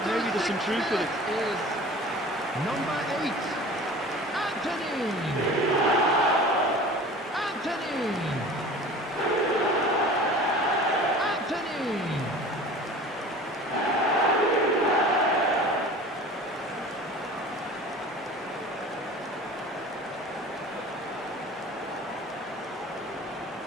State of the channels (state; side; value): normal; both; correlation 0.40